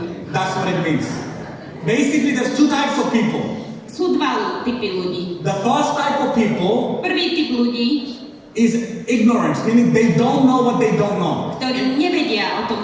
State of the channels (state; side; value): identical; both; correlation 1.00